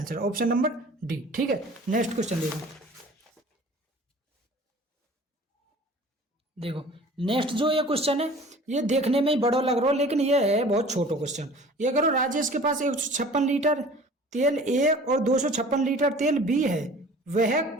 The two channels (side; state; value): both; normal; correlation 0.46